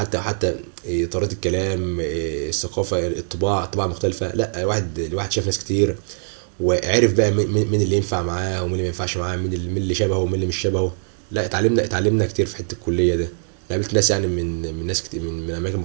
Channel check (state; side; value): silent; left; digital silence